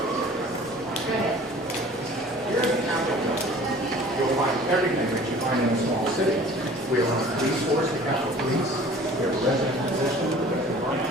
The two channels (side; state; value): both; normal; correlation 0.47